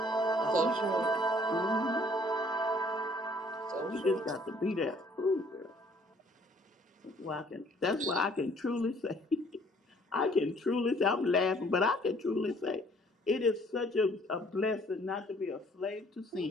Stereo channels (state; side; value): normal; both; correlation 0.60